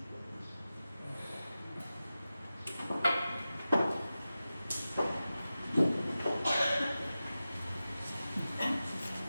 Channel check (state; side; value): inverted; both; correlation -0.94